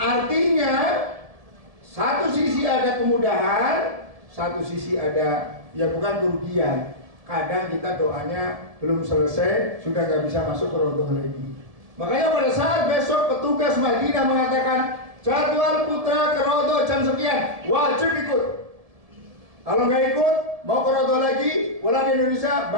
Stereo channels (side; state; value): left; late; 1.7 ms